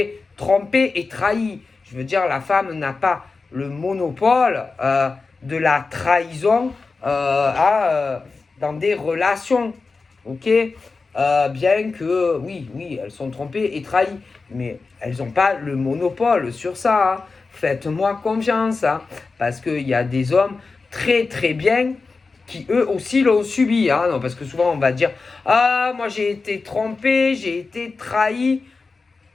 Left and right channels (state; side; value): quieter; right; 4.2 dB